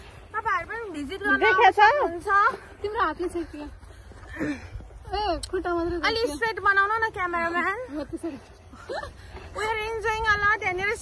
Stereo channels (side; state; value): both; identical; correlation 1.00